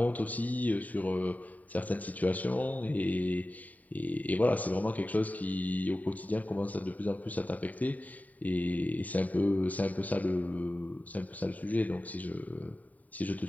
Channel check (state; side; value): late; right; 0.074 ms